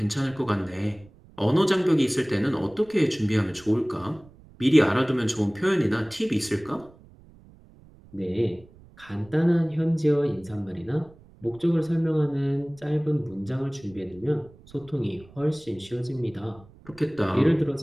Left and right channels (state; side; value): noise; right; rumble, 24 dB below the sound